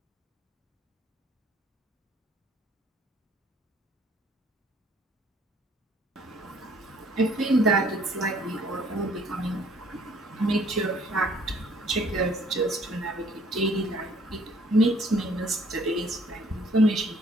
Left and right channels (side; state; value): both; normal; correlation 0.59